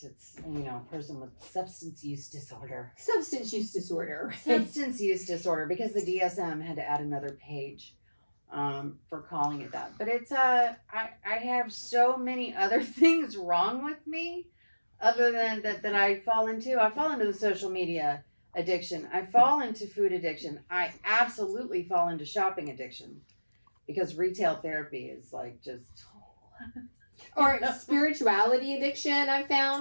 It's, a person with substance use disorder. Substance use disorder, because the DSM had to add another page for calling it that. But it's, I have so many other things wrong with me other than that I fall into. I fall into the social media addiction. I fall into food addiction. I absolutely fall into shopping addiction because retail therapy is just... Or spirituality addiction, I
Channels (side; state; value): both; inverted; correlation -1.00